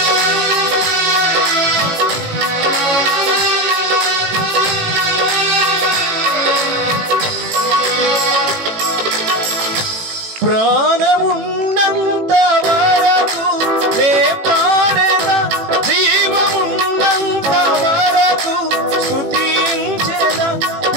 ప్రాణమున్నంత వరకు నే పాడేదా, జీవమున్నంత వరకు స్తుతించేదా.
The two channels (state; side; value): late; left; 18 ms